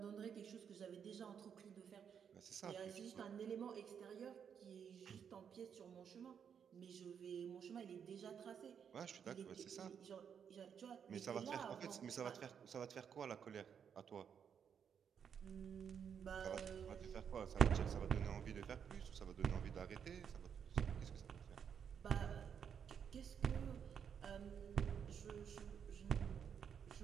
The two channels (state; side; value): quieter; left; 7.6 dB